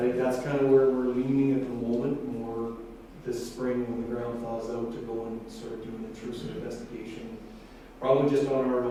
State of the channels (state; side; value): identical; both; correlation 1.00